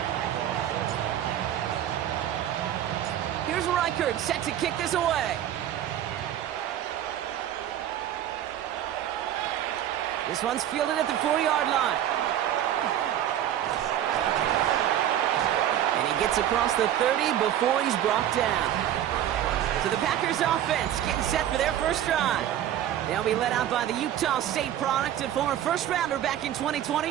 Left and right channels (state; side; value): quieter; left; 11.4 dB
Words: Here's Reichard set to kick this away. This one's fielded at the 4-yard line. And he gets across the 30 before he's brought down. So the Packers offense getting set for their first drive. They'll be led out by the Utah State product and former first-rounder back in